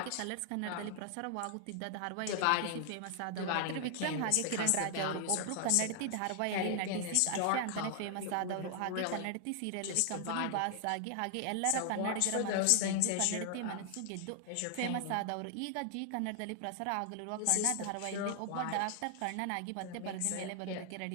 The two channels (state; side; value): different; both; correlation 0.00